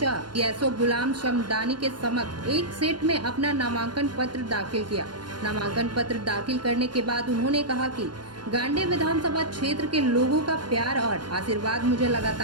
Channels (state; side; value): late; left; 0.71 ms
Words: एसओ गुलाम शमदानी के समक्ष एक सेट में अपना नामांकन पत्र दाखिल किया। नामांकन पत्र दाखिल करने के बाद उन्होंने कहा कि गांडे विधानसभा क्षेत्र के लोगों का प्यार और आशीर्वाद मुझे